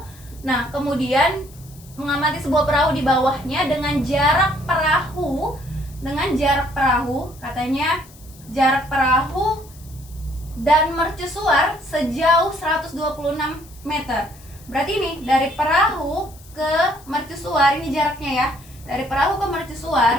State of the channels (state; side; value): noise; left; hiss, 23 dB below the sound